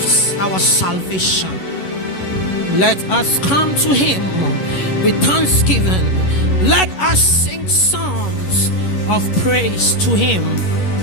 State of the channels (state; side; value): late; right; 11 ms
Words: our salvation. Let us come to him with thanksgiving. Let us sing songs of praise to him."